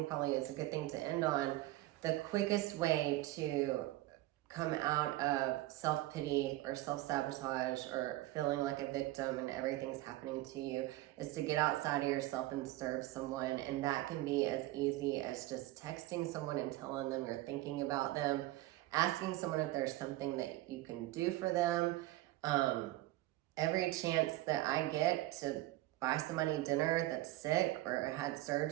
probably is a good thing to end on. The quickest way to come out of self-pity or self-sabotage or feeling like a victim and everything's happening to you is to get outside of yourself and serve someone. And that can be as easy as just texting someone and telling them you're thinking about them, asking someone if there's something that you can do for them. Every chance that I get to buy somebody dinner that's sick or had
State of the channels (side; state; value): left; quieter; 17.2 dB